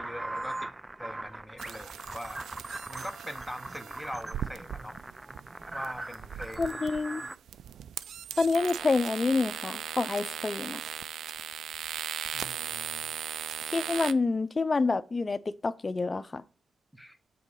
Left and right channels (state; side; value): normal; both; correlation 0.89